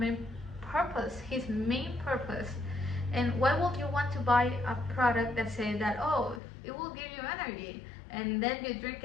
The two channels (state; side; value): drops out; right; at 6.4 s